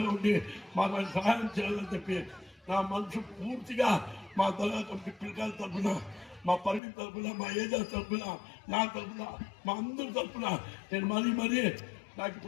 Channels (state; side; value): drops out; right; at 6.8 s